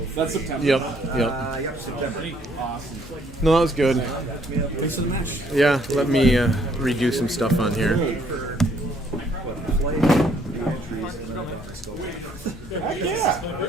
That's September. Yep. Yep. Yep, September. Awesome. No, that was good. Thanks for the match. Yeah, let me redo some stuff on here. Heck yeah.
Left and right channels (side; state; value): both; normal; correlation 0.65